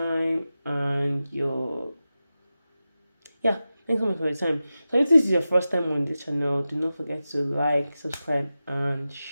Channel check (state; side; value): inverted; both; correlation -0.93